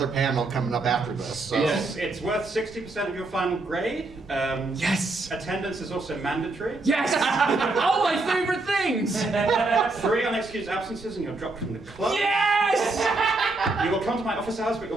panel coming up after this. So. It's worth 60% of your final grade. Yes. Attendance is also mandatory. Yes. All my favorite things. 3 unexcused absences and you're dropped from the club. Yes. You will come to my office hours, but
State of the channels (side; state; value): left; quieter; 3.2 dB